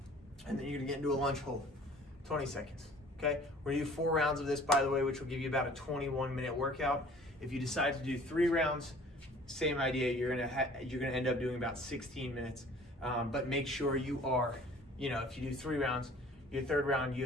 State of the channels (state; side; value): normal; both; correlation 0.50